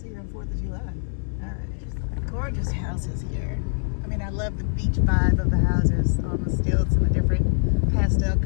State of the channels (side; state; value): right; silent; 62 dB below the other